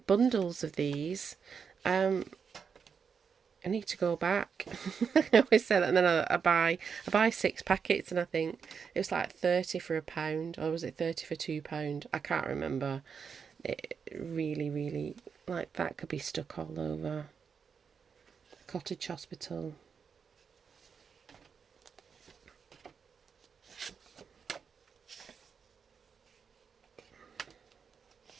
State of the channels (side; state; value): left; quieter; 6.3 dB